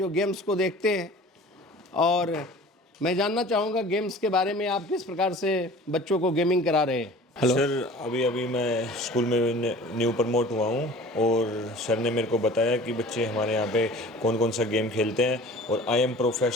games को देखते हैं, और मैं जानना चाहूँगा गेम्स के बारे में, आप किस प्रकार से बच्चों को गेमिंग करा रहे हैं? हेलो सर, अभी मैं स्कूल में न्यू प्रमोट हुआ हूँ, और सर ने मेरे को बताया कि बच्चे हमारे यहाँ पे कौन कौन सा गेम खेलते हैं, और I am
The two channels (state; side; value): normal; both; correlation 0.43